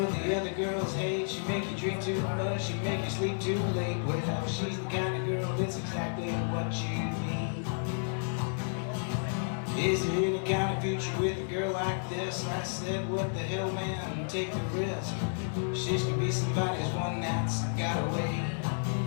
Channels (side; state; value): right; silent; 57 dB below the other